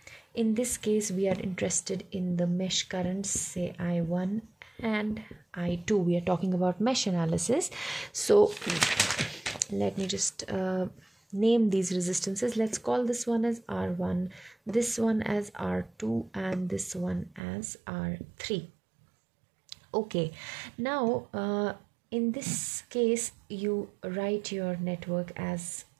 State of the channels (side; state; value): left; drops out; at 17.4 s